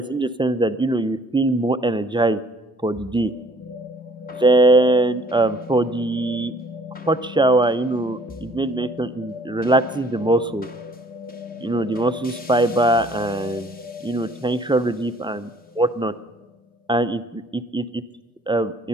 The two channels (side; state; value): both; normal; correlation 0.58